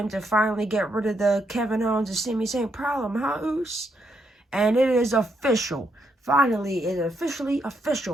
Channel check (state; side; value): normal; both; correlation 0.77